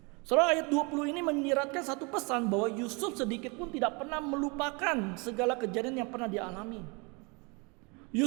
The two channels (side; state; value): left; quieter; 30.1 dB